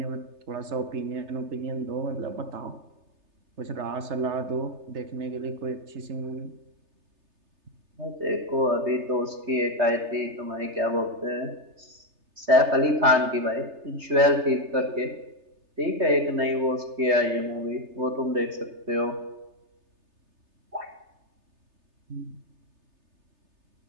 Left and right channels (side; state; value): left; late; 3.3 ms